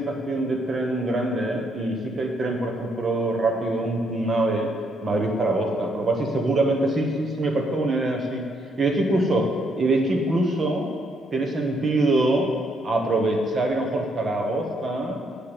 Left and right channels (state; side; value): normal; both; correlation 0.73